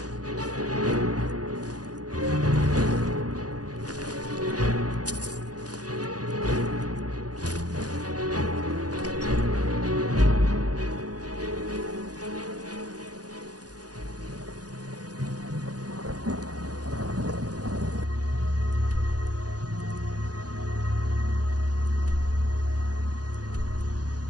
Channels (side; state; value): left; late; 0.68 ms